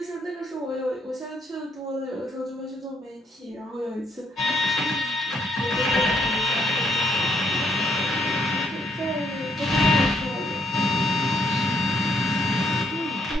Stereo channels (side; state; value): both; normal; correlation 0.71